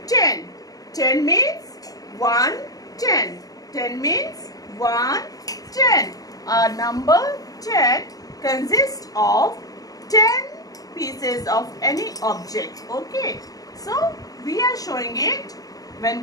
10. 10 means 1 10. 10 means 1 10. Our number 10 consists of 10 pieces of any object. Okay. So we are showing it. When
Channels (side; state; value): right; late; 0.18 ms